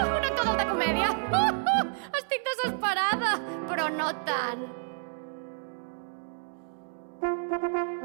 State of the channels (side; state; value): left; silent; 58 dB below the other